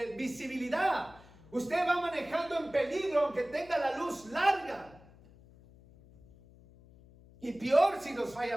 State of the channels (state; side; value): noise; left; hum, 23 dB below the sound